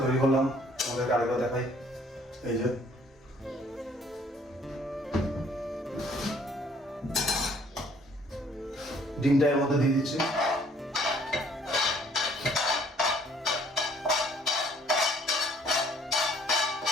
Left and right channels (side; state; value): both; normal; correlation 0.61